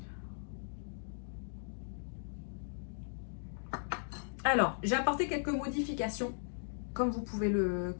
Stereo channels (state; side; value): silent; right; digital silence